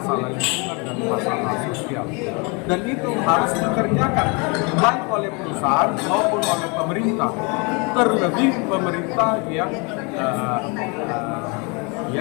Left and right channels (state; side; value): quieter; right; 30.9 dB